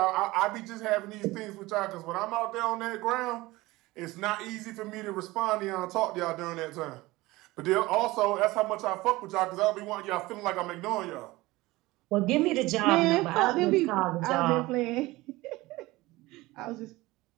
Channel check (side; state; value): left; quieter; 19.9 dB